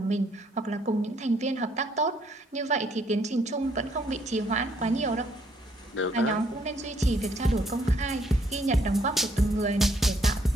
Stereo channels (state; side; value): normal; both; correlation 0.69